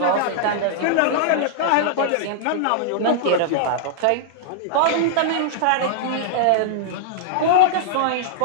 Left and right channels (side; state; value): both; different; correlation -0.01